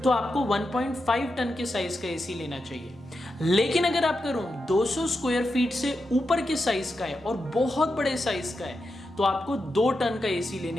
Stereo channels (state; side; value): normal; both; correlation 0.88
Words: तो आपको 1.5 टन के साइज का एसी लेना चाहिए। लेकिन अगर आपका रूम 200 स्क्वायर फीट से ऊपर के साइज का है और बहुत बड़े साइज का है तो आपको 2 टन का एसी